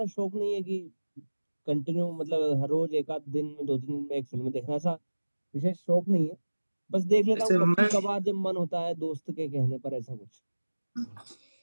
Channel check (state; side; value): inverted; both; correlation -1.00